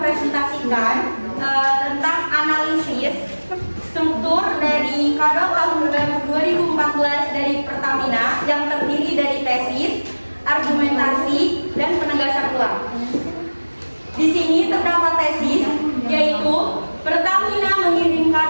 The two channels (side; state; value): both; inverted; correlation -1.00